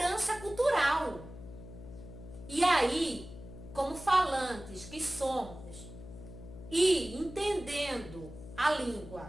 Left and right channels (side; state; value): left; noise; hum, 14 dB below the sound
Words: cultural. E aí, como falantes que somos, e entendendo a